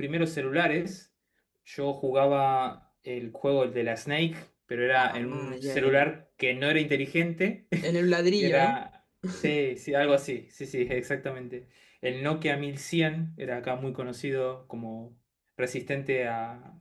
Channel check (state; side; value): identical; both; correlation 1.00